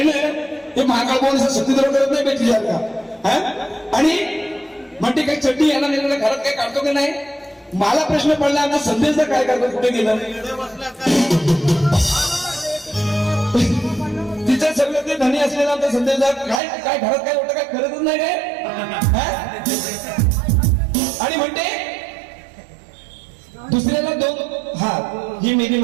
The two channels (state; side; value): drops out; left; at 16.6 s